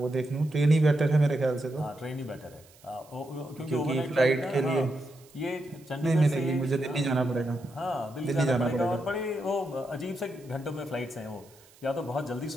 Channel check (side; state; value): right; noise; hiss, 27 dB below the sound